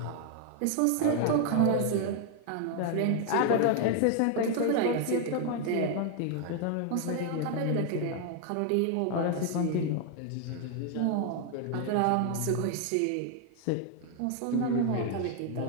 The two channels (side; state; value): both; different; correlation 0.00